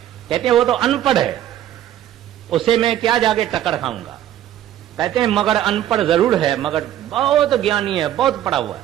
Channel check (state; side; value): quieter; left; 11.9 dB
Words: कहते हैं वो तो अनपढ़ है, उसे मैं क्या जाके टक्कर खाऊंगा। कहते हैं मगर अनपढ़ जरूर है, मगर बहुत ज्ञानी है, बहुत पढ़ा हुआ है,